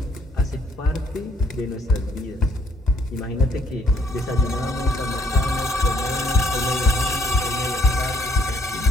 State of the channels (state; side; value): normal; both; correlation 0.65